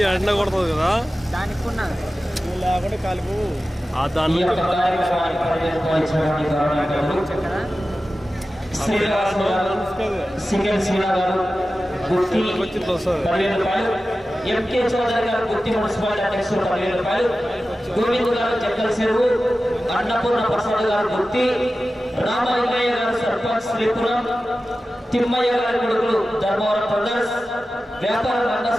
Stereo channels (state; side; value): normal; both; correlation 0.94